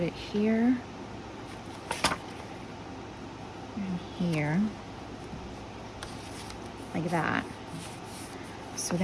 it here and here, like that. So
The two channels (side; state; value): both; identical; correlation 1.00